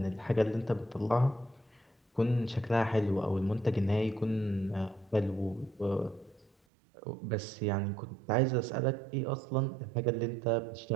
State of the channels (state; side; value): drops out; left; at 6.5 s